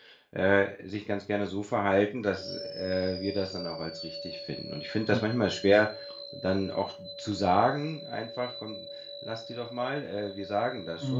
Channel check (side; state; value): both; identical; correlation 1.00